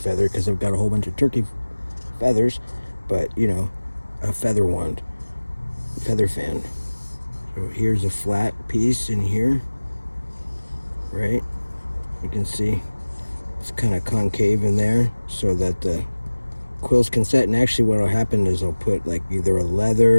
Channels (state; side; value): inverted; both; correlation -1.00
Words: because I've got a whole bunch of turkey feathers, but you know, a feather wand, feather fan. So here's a flat piece in here, right? You can see it's kind of concave in there so that the quills can set. And actually what will happen is I'll put like either a